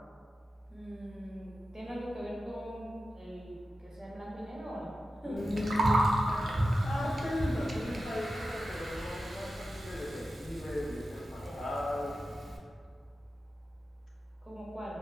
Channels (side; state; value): both; normal; correlation 0.92